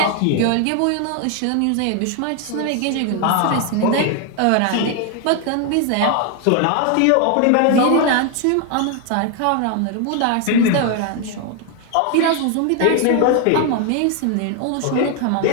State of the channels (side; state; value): both; different; correlation 0.01